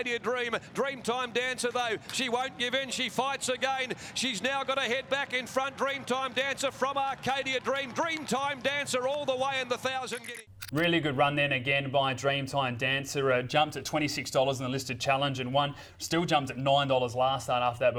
Dream. Dreamtime Dancer though. She won't give in. She fights again. She's now got to head back in front. Dreamtime Dancer from Arcadia Dream. Dreamtime Dancer all the way in the 1,000 Guineas. Really good run then again by Dreamtime Dancer. Jumped at $26 in the listed challenge and won. Still jumped at $9 last start after that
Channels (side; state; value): both; identical; correlation 1.00